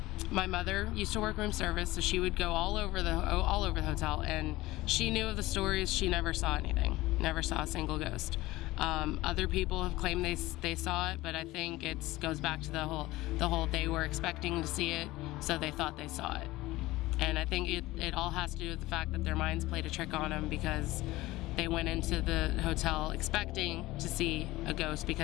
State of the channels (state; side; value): quieter; right; 18.4 dB